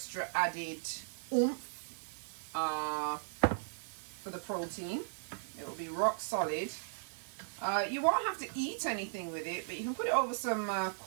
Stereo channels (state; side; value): silent; left; digital silence